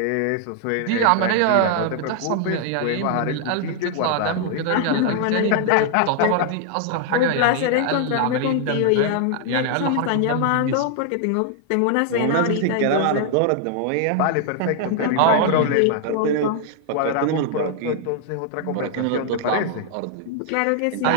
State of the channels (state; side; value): different; both; correlation 0.00